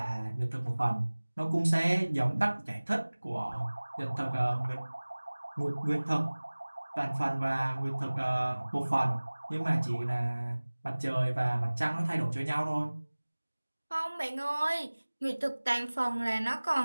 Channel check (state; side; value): inverted; both; correlation -1.00